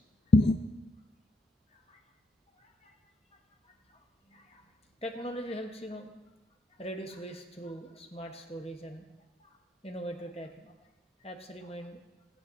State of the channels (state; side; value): normal; both; correlation 0.78